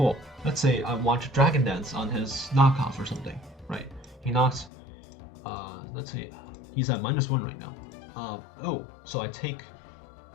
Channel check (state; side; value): drops out; right; at 4.7 s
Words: Let's say I want to Dragon Dance on his knockoff or something, right? He knocks, let's see, he's at -1 right now. So I take,